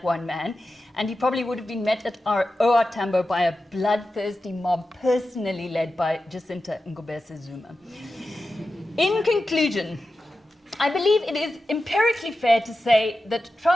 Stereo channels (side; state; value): both; normal; correlation 0.92